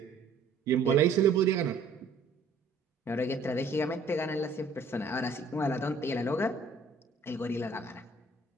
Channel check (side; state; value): left; quieter; 3.6 dB